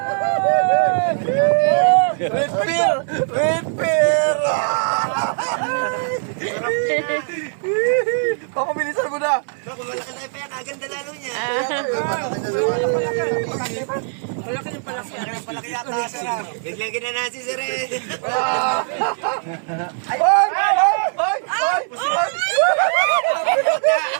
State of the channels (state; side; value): silent; left; digital silence